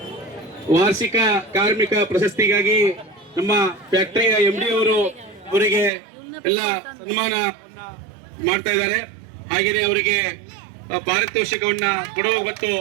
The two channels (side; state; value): left; drops out; at 5.9 s